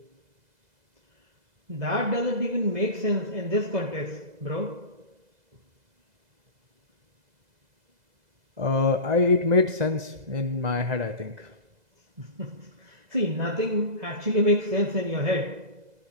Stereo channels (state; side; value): late; left; 2.0 ms